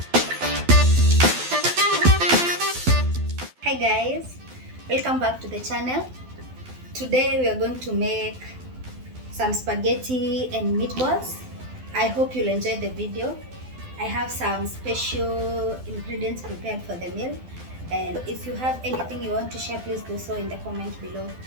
Hi guys. Welcome back to the channel. Today we are going to make some spaghetti and meatballs. I hope you'll enjoy the video. I have some special ingredients prepared for the meal, and if you have anything you want to share, please do so in the comment below.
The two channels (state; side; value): late; left; 12 ms